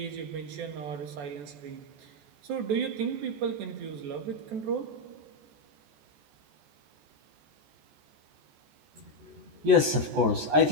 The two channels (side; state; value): left; late; 14 ms